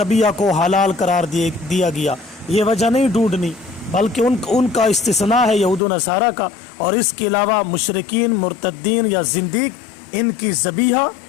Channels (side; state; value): right; drops out; at 5.8 s